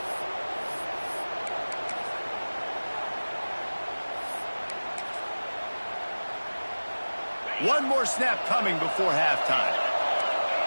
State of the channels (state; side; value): inverted; both; correlation -1.00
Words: One more snap coming before halftime.